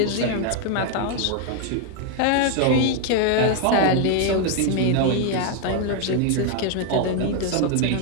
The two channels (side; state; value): both; different; correlation 0.00